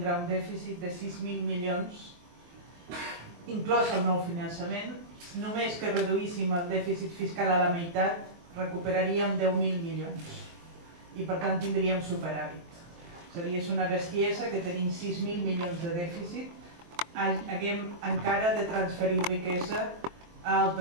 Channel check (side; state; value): left; late; 23 ms